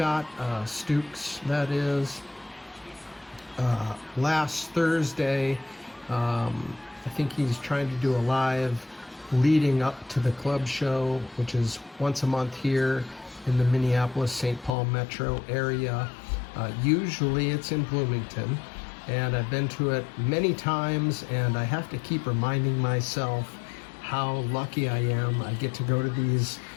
Stukes, that is, last Thursday. I think he's trying to do a live leading up to the club show, which is once a month here in the Minneapolis-St. Paul metro area. Usually it's in Bloomington, and I've been to it many times, and I have to keep reminding myself how lucky I am. I get to go to these,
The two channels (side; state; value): right; drops out; at 14.8 s